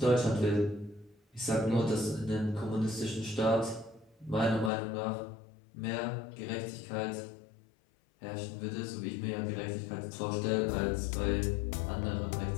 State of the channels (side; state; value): right; drops out; at 4.7 s